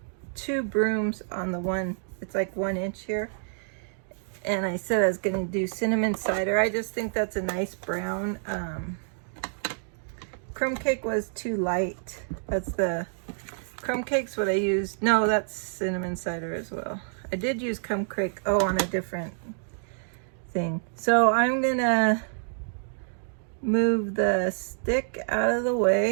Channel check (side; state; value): left; silent; digital silence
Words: 2 brooms on the one, it's like 1 inch here. And I said I was gonna do cinnamon cider. I just think that's a nice brown. Crumb cake was too light. That's the, crumb cake's what I used. No, that's cinnamon cider as well. I did use crumb cake, oh, on a different thing. So I'm gonna move the stick out of the